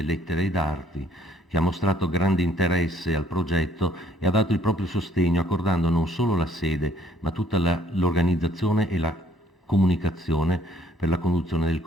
Lettere ed Arti, che ha mostrato grande interesse al progetto e ha dato il proprio sostegno accordando non solo la sede, ma tutta l'organizzazione e la comunicazione per la conduzione del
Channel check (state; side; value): normal; both; correlation 0.63